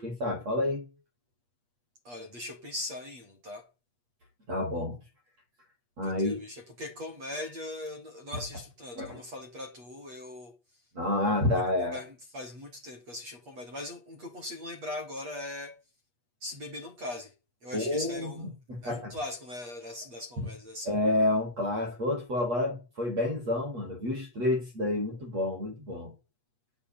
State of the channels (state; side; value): late; left; 8.3 ms